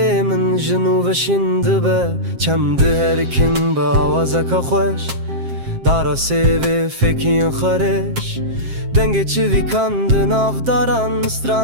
min jin û veşîn dibe Çemdi her kim bi awazeka xweş Dara sêvê fekiyên xwereş Dengê çivî kan di navdaran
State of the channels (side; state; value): left; late; 7.5 ms